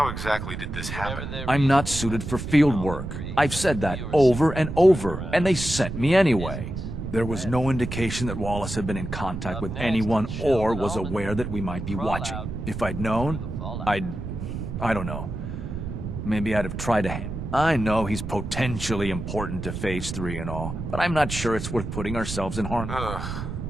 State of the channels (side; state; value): right; noise; rumble, 6 dB below the sound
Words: exactly did this happen? I'm not suited for field work. I've said that over and over, and they sent me anyway. There was no indication that Wallace had been in contact with anyone or was aware that we might be watching. If I'd known, I don't know. Maybe I'd have tried to I know he's potentially important to Phase 3 and all, but I'm not sure it's worth putting ourselves in harm.